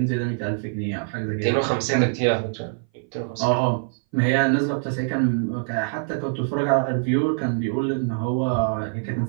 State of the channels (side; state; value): left; silent; 59 dB below the other